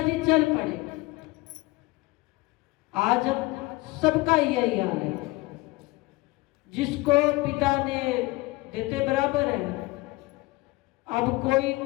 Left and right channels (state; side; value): quieter; right; 21.8 dB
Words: चल पड़े। आज अब सबका यही हाल है, जिसको पिता ने देते बराबर है। अब कोई